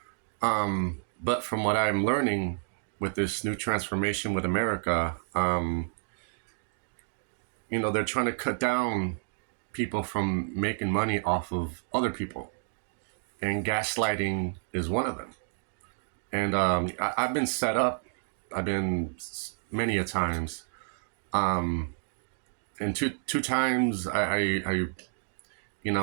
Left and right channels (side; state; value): left; silent; digital silence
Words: But from what I'm learning with this new transformation with America, they're trying to cut down people from making money off of other people, and gaslighting is one of them. And I've been set up. I've been many a times. Um, and two times you